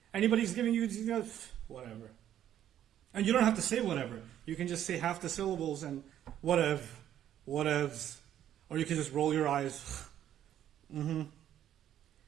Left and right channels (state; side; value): quieter; left; 11.0 dB